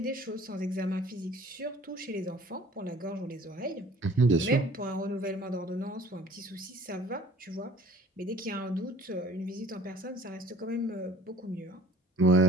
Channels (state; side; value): normal; both; correlation 0.51